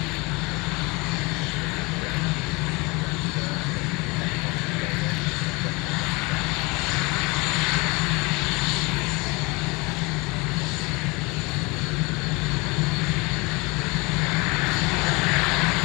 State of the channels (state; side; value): quieter; right; 26.3 dB